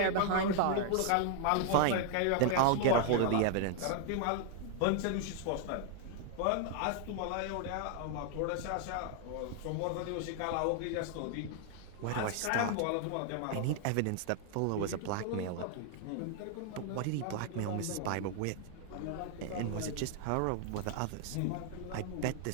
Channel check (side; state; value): both; different; correlation 0.00